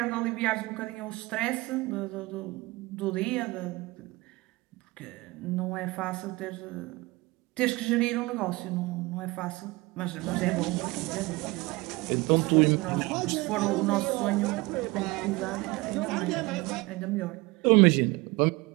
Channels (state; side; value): quieter; left; 22.6 dB